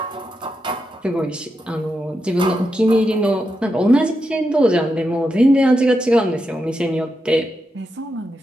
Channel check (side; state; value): both; normal; correlation 0.86